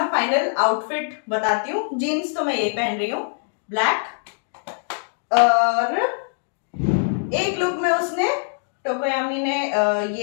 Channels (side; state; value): right; silent; digital silence